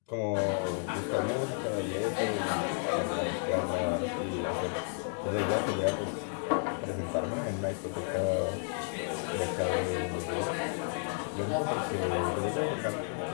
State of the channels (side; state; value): right; silent; 55 dB below the other